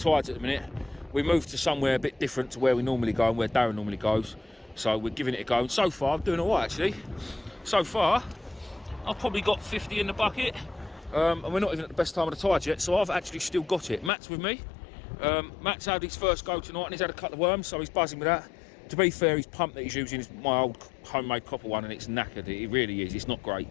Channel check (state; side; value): drops out; right; at 14.1 s